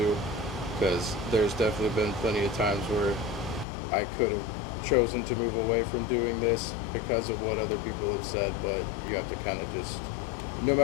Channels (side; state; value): right; drops out; at 3.7 s